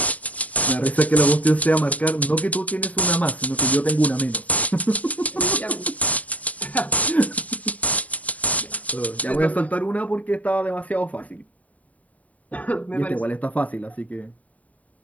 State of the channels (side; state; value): right; late; 0.071 ms